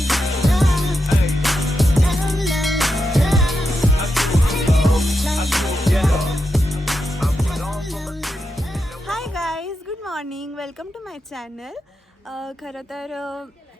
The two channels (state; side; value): normal; both; correlation 0.86